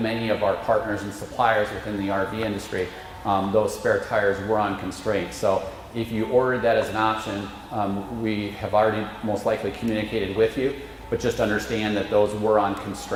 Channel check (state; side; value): identical; both; correlation 1.00